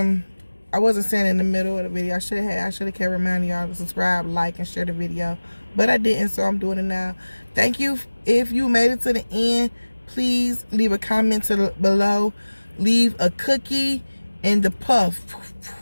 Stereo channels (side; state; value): both; inverted; correlation -1.00